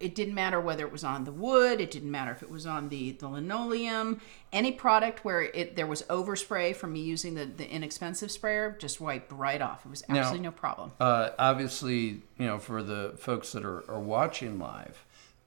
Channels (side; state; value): left; silent; digital silence